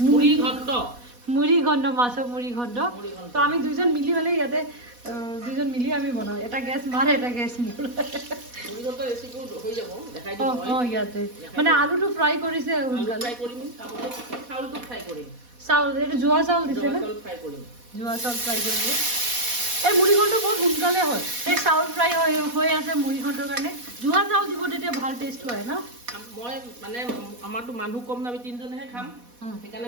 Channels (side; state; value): left; late; 4.1 ms